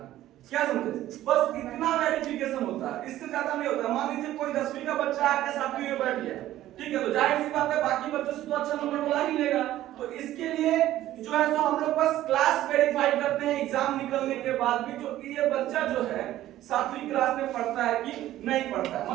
क्या समझे? बस इतना वेरिफिकेशन होता है, इससे ज्यादा नहीं होता। मान लीजिए कोई 10वीं का बच्चा आके 7वीं में बैठ गया, ठीक है, तो जाहिर सी बात है बाकी बच्चों से तो अच्छा नंबर बुला ही लेगा। तो इसके लिए जो है तो हम लोग बस क्लास वेरीफाई करते हैं एग्जाम निकलने के बाद भी, जो कि ये बच्चा जो है 7वीं क्लास में पढ़ता है कि नहीं पढ़ता है।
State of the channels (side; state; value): left; quieter; 14.0 dB